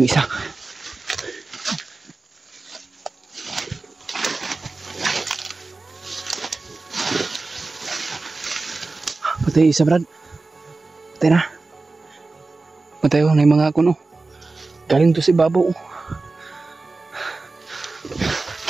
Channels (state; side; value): quieter; left; 3.6 dB